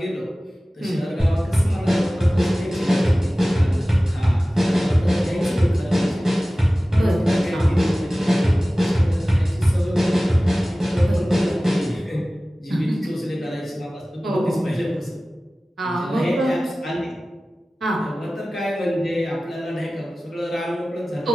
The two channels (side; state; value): both; normal; correlation 0.97